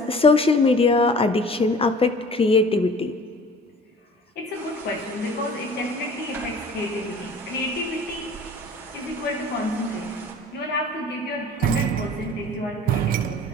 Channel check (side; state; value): both; normal; correlation 0.46